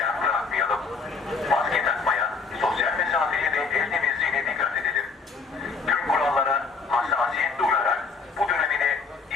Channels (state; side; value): quieter; right; 4.6 dB